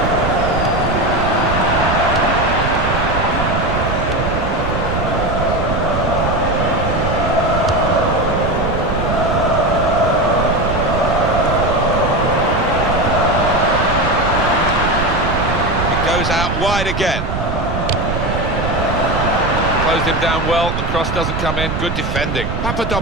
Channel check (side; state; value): right; noise; rumble, 3 dB below the sound